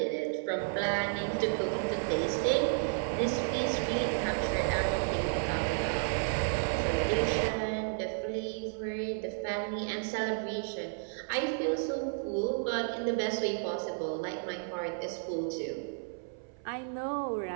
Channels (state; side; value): silent; left; 56 dB below the other